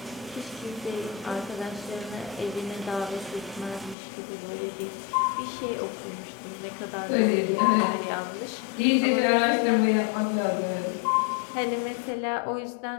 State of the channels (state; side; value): drops out; right; at 4.0 s